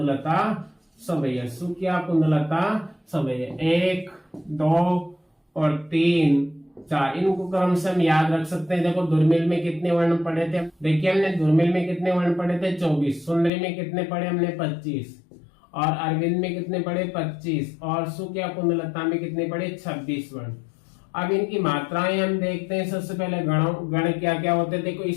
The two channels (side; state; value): right; drops out; at 13.5 s